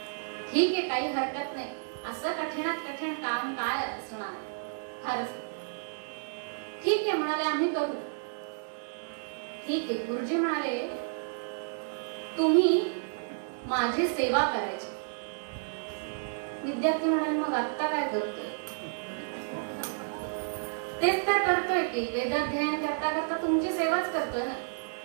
ठीक आहे काही हरकत नाही, असं कठीणात कठीण काम काय असणार, फारच. ठीक आहे म्हणाले आम्ही करू. ठीक आहे. गुरुजी म्हणाले तुम्ही माझी सेवा करायची. विद्यार्थी म्हणाले मग आता काय करतोय? तेच तर करतोय की वेदाध्ययन करता करता तुमची सेवाच करतोय ना.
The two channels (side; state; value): left; silent; digital silence